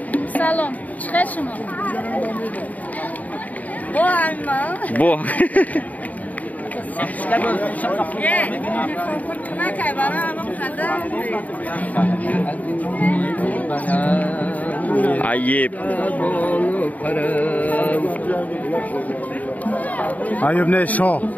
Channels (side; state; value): right; late; 0.074 ms